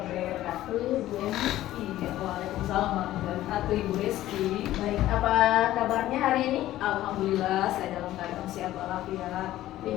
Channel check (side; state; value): right; quieter; 14.4 dB